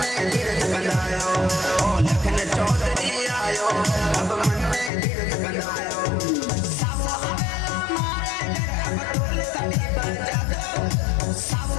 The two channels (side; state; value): right; drops out; at 4.9 s